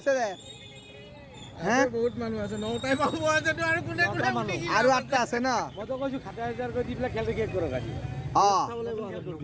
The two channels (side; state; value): both; identical; correlation 1.00